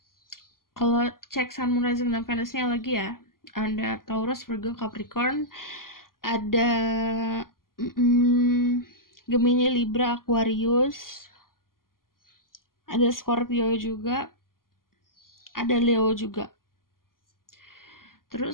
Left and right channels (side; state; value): right; late; 0.91 ms